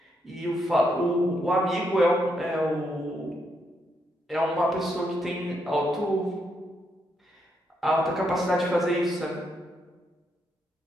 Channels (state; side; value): normal; both; correlation 0.78